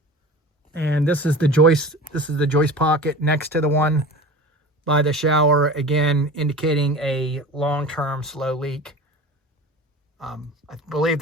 And this is the joist. This is the joist pocket next to the one by the shower, again indicating a long-term slow leak. I believe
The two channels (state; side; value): normal; both; correlation 0.35